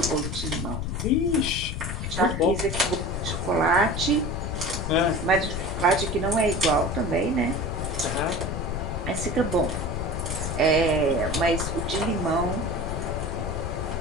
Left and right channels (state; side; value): noise; left; rumble, 3 dB below the sound